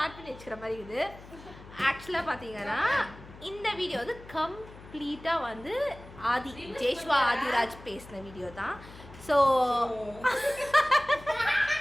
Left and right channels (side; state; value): left; noise; hum, 18 dB below the sound